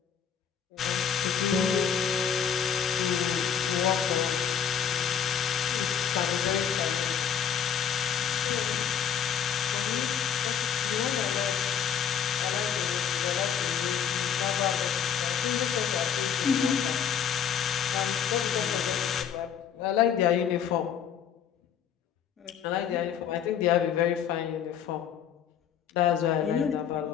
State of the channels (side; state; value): right; quieter; 8.2 dB